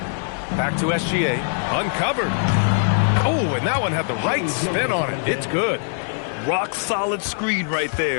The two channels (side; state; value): right; silent; digital silence